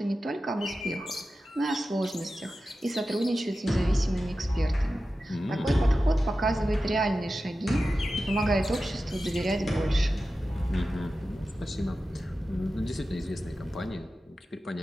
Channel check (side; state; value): both; normal; correlation 0.93